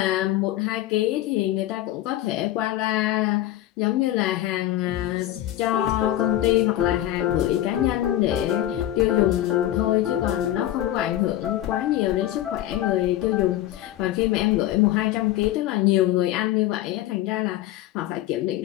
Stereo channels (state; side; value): quieter; right; 13.7 dB